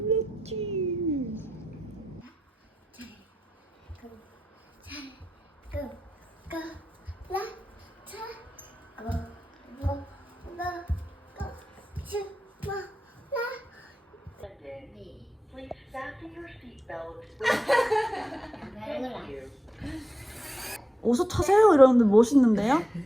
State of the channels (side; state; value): both; normal; correlation 0.90